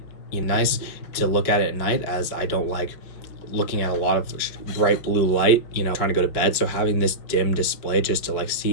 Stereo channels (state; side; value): late; right; 5.8 ms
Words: nice to look at it at night, as I don't like looking at a lot of bright blue light, trying to go to bed. So having this dim display just to